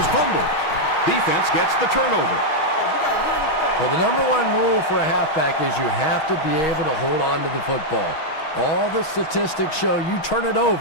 fumbled. Defense gets the turnover. Well, the number one rule for a halfback is you have to be able to hold on to the football. All the statistics show you turn it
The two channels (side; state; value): right; late; 6.4 ms